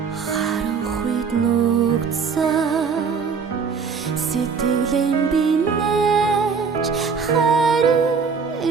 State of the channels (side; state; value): left; quieter; 5.7 dB